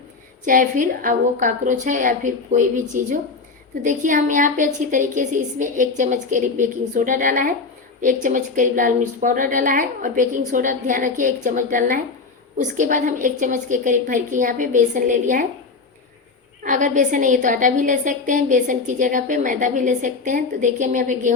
चाहे फिर अब वो कॉकरोच है या फिर कोई भी चीज़ हो। तो देखिए हम यहाँ पे अच्छी तरीके से इसमें 1 चम्मच करीब बेकिंग सोडा डाला है, 1 चम्मच करीब लाल मिर्च पाउडर डाला है, और बेकिंग सोडा ध्यान रखिए 1 चम्मच डालना है। उसके बाद हम 1 चम्मच के करीब भर के यहाँ पे बेसन ले लिया है। अगर बेसन नहीं है तो आटा भी ले सकते हैं, बेसन की जगह पे मैदा भी ले सकते हैं। तो देखिए हम यहाँ पे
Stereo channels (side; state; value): right; quieter; 4.3 dB